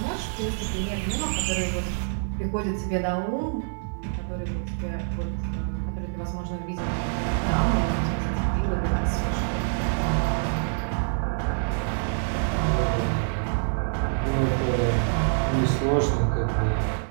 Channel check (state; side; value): silent; left; 61 dB below the other